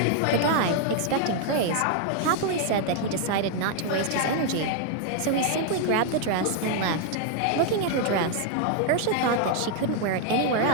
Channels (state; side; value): different; both; correlation 0.00